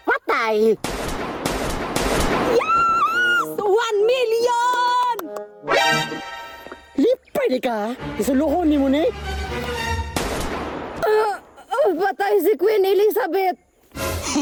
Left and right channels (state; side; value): identical; both; correlation 1.00